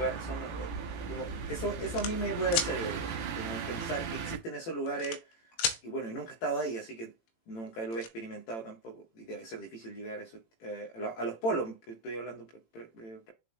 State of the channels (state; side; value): late; right; 18 ms